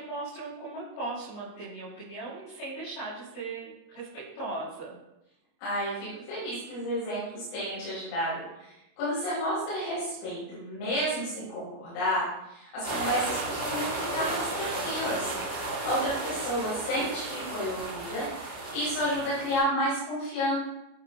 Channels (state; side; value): late; right; 29 ms